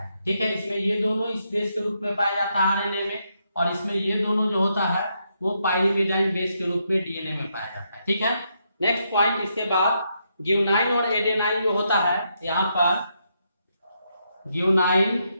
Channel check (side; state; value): both; inverted; correlation -0.79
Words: ठीक है, इसमें ये दोनों इस बेस के रूप में पाया जाता है आरएनए में, और इसमें ये दोनों जो होता है वो पायरीमिडाइन बेस के रूप में डीएनए में पाया जाता है। ठीक है, नेक्स्ट पॉइंट, इसके बाद ग्यूनाइन और एडेनाइन जो होता है, यहाँ पर ग्यूनाइन